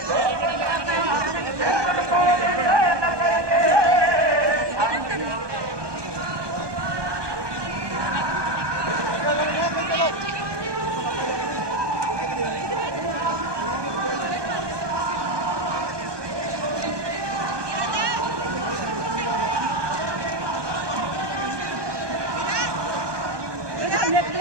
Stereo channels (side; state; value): left; late; 1.2 ms